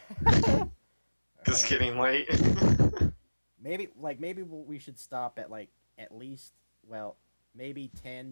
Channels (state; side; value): inverted; both; correlation -1.00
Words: It's getting late. maybe we should stop at at least maybe 10